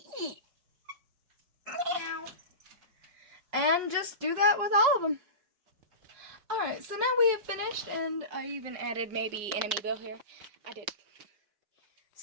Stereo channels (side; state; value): left; late; 5.4 ms